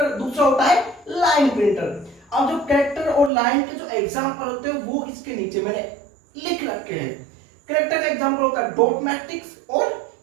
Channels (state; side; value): drops out; left; at 3.3 s